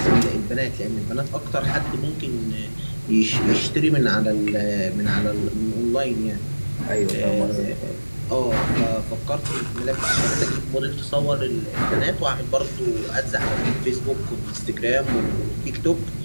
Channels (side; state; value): both; inverted; correlation -1.00